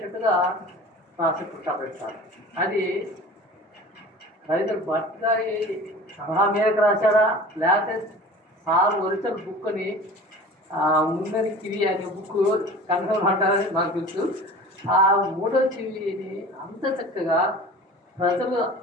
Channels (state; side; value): normal; both; correlation 0.39